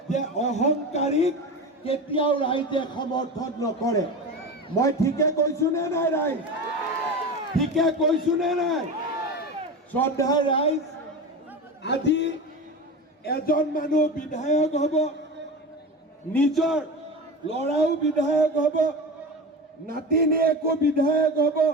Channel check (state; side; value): normal; both; correlation 0.27